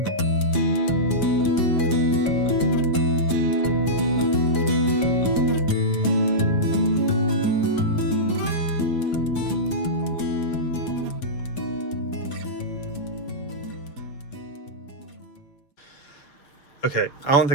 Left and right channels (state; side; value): late; right; 7.1 ms